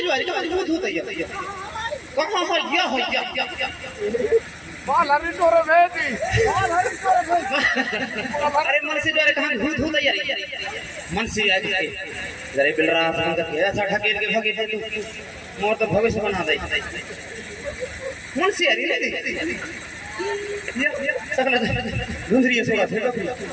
ज्वारे कहाँ भूत होता यार, कहाँ हो या बाल हरी तोरे बेटी अरे मन से ज्वारे कहाँ भूत होता यार, मन से आज जरे बिल रहा था करके ऐसा ढकेल के भागे मोर तो भविष्य बना दे मन से यार ये सकला धुंधरी सोरा थे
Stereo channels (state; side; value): identical; both; correlation 1.00